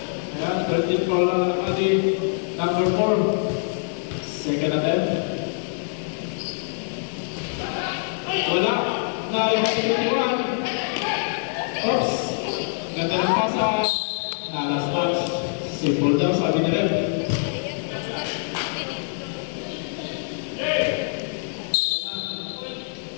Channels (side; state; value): right; silent; 62 dB below the other